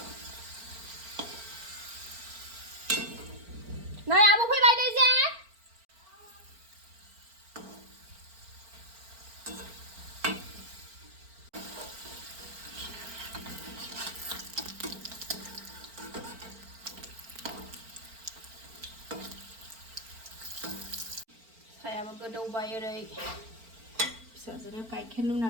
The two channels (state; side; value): late; left; 4.4 ms